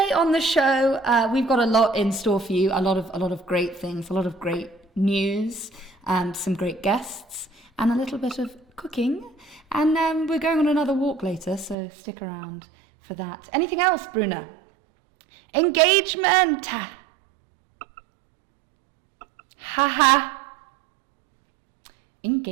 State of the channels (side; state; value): left; drops out; at 11.8 s